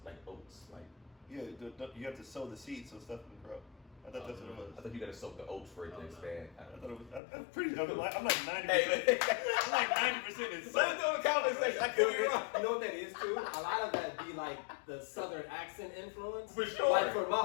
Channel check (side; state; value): right; drops out; at 7.2 s